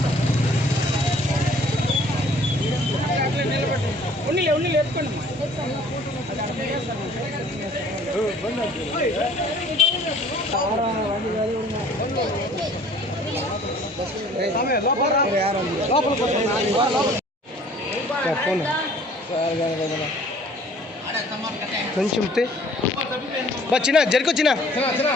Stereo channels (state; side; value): normal; both; correlation 0.53